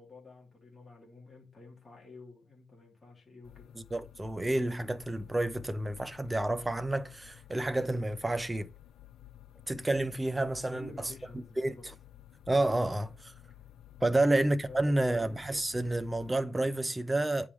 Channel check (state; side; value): normal; both; correlation 0.97